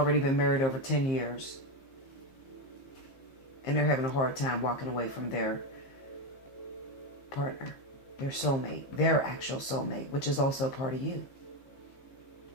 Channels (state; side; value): late; right; 15 ms